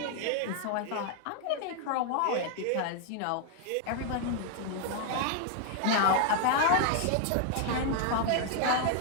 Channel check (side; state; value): both; different; correlation 0.00